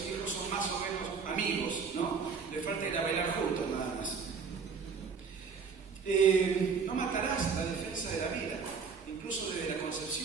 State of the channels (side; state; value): left; quieter; 5.5 dB